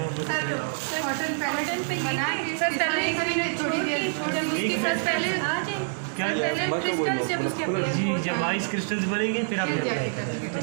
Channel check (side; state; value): left; silent; digital silence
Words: जी, जब आइस क्रिस्टल्स बनेंगे फिर आप अप्लाई करेंगे।